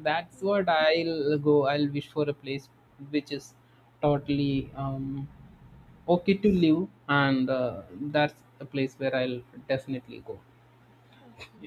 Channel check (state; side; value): identical; both; correlation 1.00